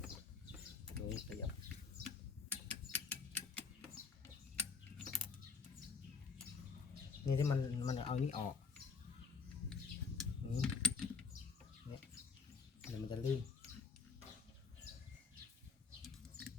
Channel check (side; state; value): right; quieter; 5.5 dB